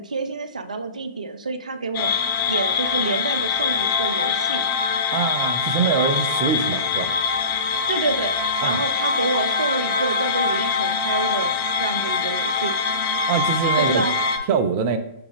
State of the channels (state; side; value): inverted; both; correlation -0.35